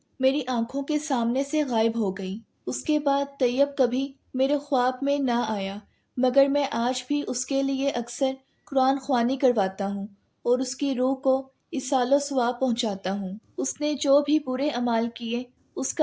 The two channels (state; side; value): identical; both; correlation 1.00